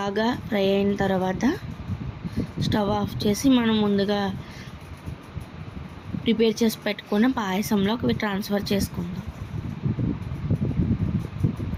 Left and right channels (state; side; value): identical; both; correlation 1.00